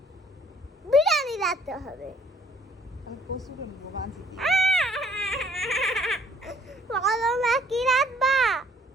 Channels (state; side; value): normal; both; correlation 0.62